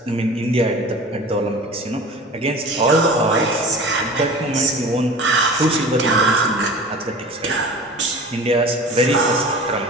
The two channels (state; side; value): normal; both; correlation 0.38